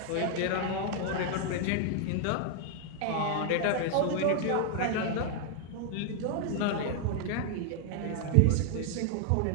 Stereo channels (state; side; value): different; both; correlation 0.00